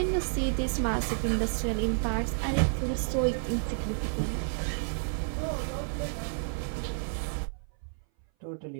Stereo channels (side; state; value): left; silent; 57 dB below the other